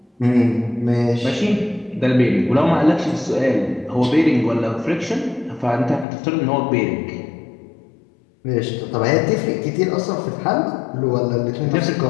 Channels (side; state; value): right; drops out; at 6.1 s